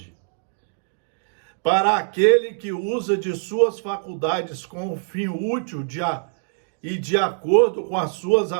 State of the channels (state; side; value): silent; left; digital silence